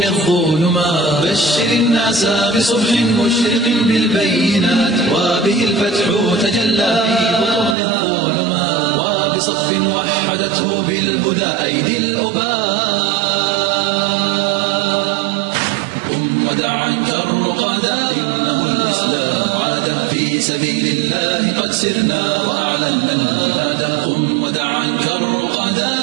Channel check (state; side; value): drops out; left; at 7.8 s